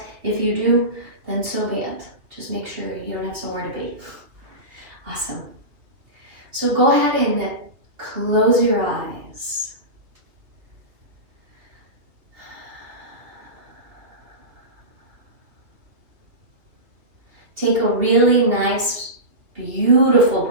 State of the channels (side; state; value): left; late; 3.0 ms